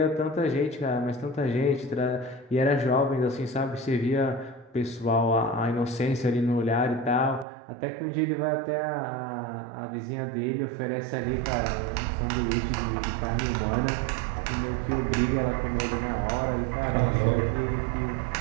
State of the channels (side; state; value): left; drops out; at 7.5 s